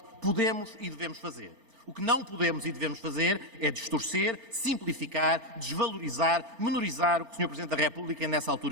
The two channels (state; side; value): late; left; 3.3 ms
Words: podemos e devemos fazer. O que não podemos e devemos fazer é distorcer, simplificar, desvalorizar, menorizar o que o Sr. Presidente da República nessa